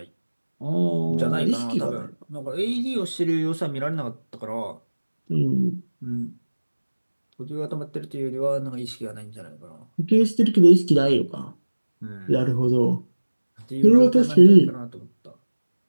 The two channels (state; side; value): inverted; both; correlation -1.00